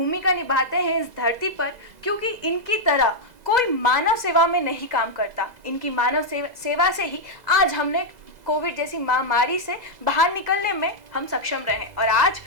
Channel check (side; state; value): left; late; 2.0 ms